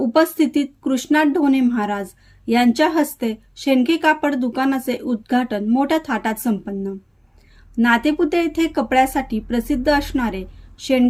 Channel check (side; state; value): both; identical; correlation 1.00